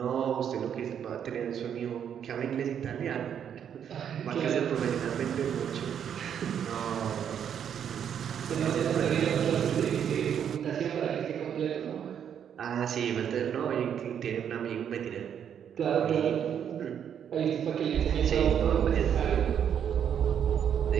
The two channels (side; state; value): left; quieter; 8.6 dB